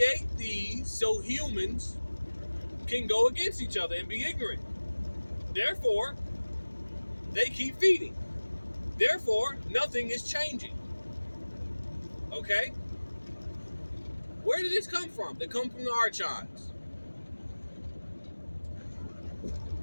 these so humans can go against each other and be ignorant. Therefore, they keep feeding. Therefore, nothing is changing. Okay? Where did this come from? They come from the Archons.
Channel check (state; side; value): inverted; both; correlation -1.00